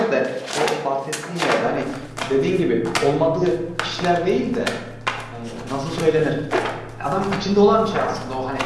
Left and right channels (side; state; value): both; identical; correlation 1.00